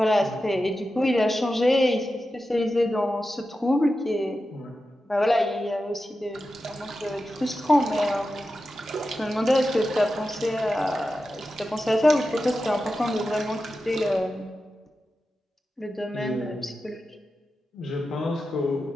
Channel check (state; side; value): normal; both; correlation 0.92